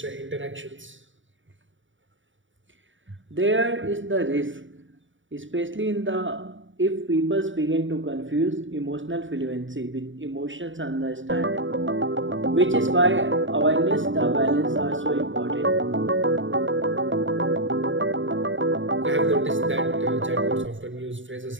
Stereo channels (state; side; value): late; left; 0.56 ms